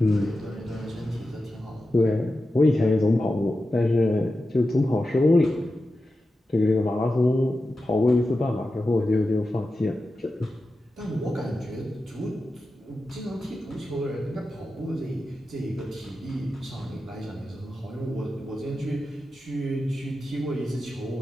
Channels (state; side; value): normal; both; correlation 0.92